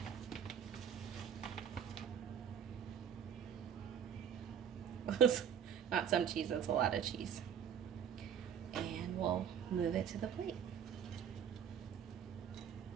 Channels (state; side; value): quieter; left; 8.3 dB